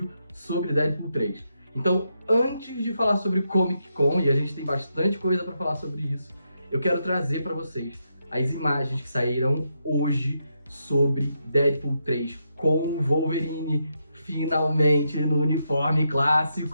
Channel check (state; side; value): inverted; both; correlation -0.82